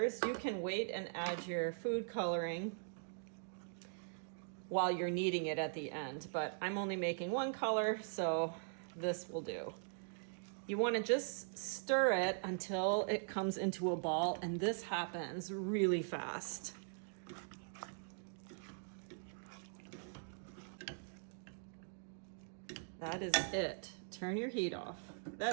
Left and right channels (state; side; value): silent; left; digital silence